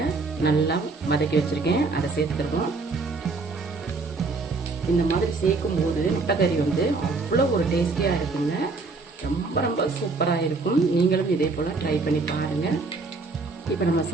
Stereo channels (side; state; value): left; quieter; 3.9 dB